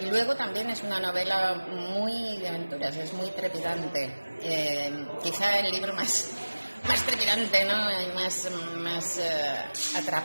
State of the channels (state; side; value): inverted; both; correlation -1.00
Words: Y luego también es una novela muy de aventuras, es muy trepidante. Quizá el libro más más trepidante, ¿no? Y más